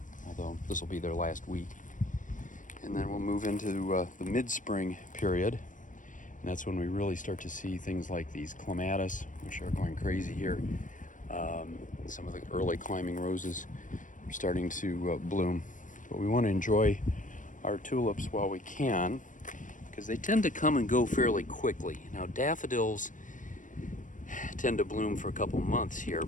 although this will be their last week. And then we'll move into the mid-spring period, and that's when we really start to see things like these clematis, which are going crazy here. Some of the early climbing roses are starting to bloom. But we want to enjoy our tulips while we can, because they tend to come and go fairly quickly. Now daffodils tend to bloom for a couple months here,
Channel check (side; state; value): right; late; 0.37 ms